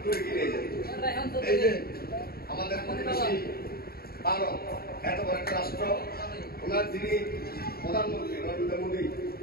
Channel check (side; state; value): right; late; 0.44 ms